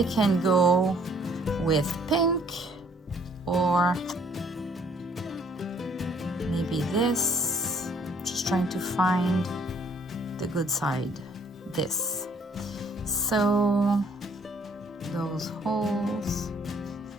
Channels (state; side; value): normal; both; correlation 0.62